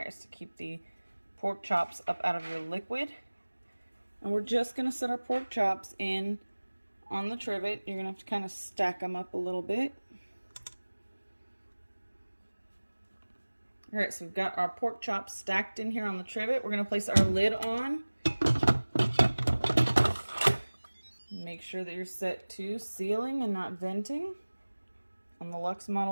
is to keep the pork chops up out of your liquid. And we're just going to set our pork chops in on the trivet. You're going to have to kind of stack them up a little bit. Alright, so we've got our pork chops stacked in here on the trivet. We're going to place our lid on. Make sure that you're set to sealing and not venting. On the Luxe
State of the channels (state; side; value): inverted; both; correlation -1.00